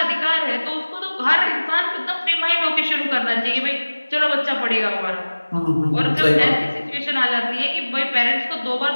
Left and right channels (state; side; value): inverted; both; correlation -1.00